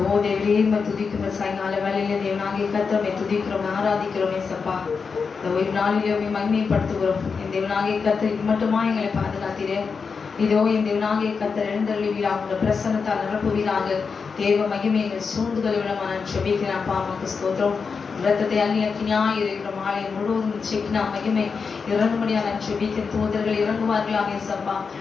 தேவரே துதிக்கிறோம். சாயங்கால வேலையில தேவனாகிய கர்த்தரை துதிக்கிறோம், ஆராதிக்கிறோம். ஏசப்பா, இந்த ஓய்வு நாளிலே மகிமைப்படுத்துகிறோம். என் தேவனாகிய கர்த்தர் மட்டுமா எங்களை பாதுகாத்தீரே. இதோ என் தேவனாகிய கர்த்தர் எழுந்தருளுவீராக, உங்கள் பிரசன்னத்தால் நிரப்புவீராக. தேவ மகிமை எங்கள் சூழ்ந்துகளை விடமா நான் ஜெபிக்கிறேன். அப்பா அம்மாக்கு ஸ்தோத்திரம். இரத்தத்தை அள்ளி அக்கினியாய் இருக்கிற மாலை முழுவதும் செக்கினா மகிமை இறங்கும்படியா நான் ஜெபிக்கிறேன். தூதர்கள் இறங்குவார்களாக. ஏசப்பா,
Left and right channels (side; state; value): right; quieter; 5.3 dB